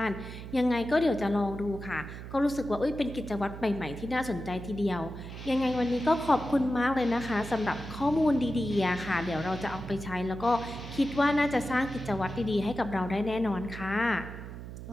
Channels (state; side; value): noise; right; hum, 11 dB below the sound